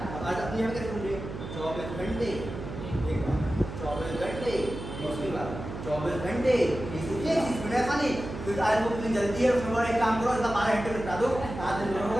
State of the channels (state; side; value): noise; right; hum, 9 dB below the sound